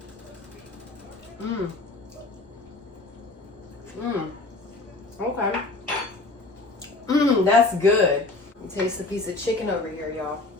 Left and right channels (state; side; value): quieter; right; 3.3 dB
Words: Okay. That's good. Taste the piece of chicken over here, y'all.